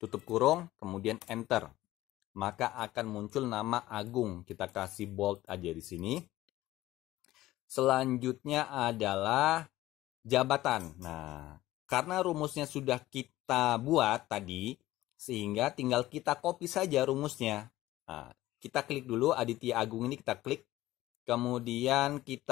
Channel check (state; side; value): quieter; right; 16.2 dB